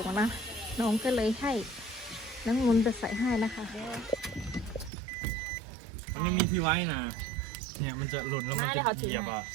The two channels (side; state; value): left; drops out; at 4.9 s